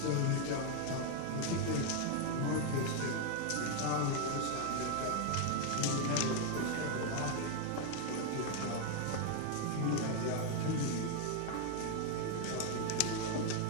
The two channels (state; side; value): different; both; correlation 0.00